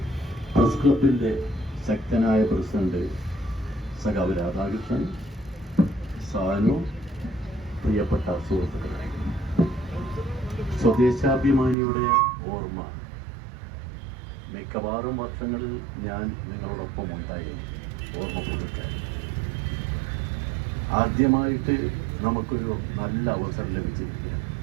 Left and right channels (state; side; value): drops out; left; at 11.8 s